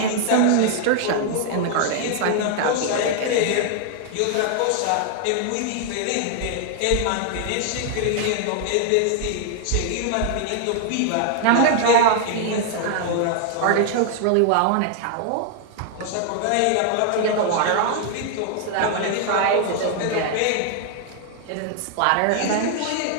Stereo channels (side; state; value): both; different; correlation 0.00